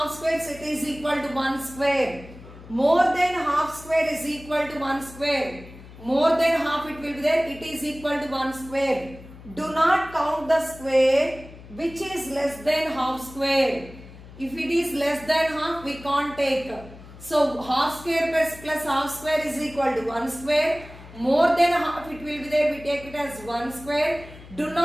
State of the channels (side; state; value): left; noise; hum, 18 dB below the sound